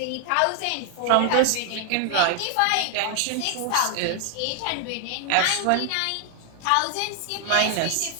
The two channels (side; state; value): both; different; correlation 0.00